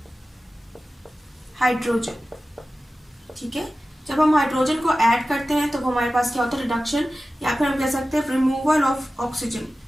हाइड्रोजन, ठीक है। जब हम हाइड्रोजन को ऐड करते हैं तो हमारे पास क्या होता है, रिडक्शन, या फिर हम कह सकते हैं रिमूवल ऑफ ऑक्सीजन,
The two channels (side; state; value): both; normal; correlation 0.95